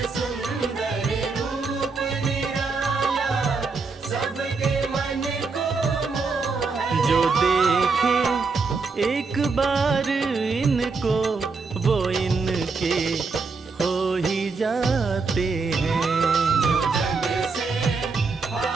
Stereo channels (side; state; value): left; quieter; 4.4 dB